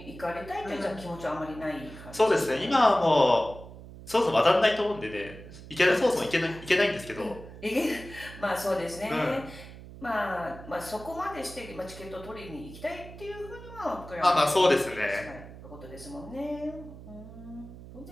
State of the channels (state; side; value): noise; right; hum, 15 dB below the sound